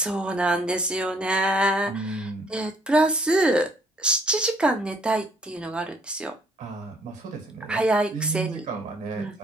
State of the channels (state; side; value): normal; both; correlation 0.63